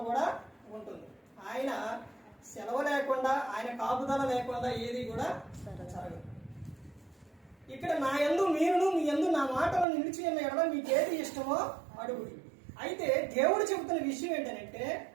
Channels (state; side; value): drops out; left; at 9.9 s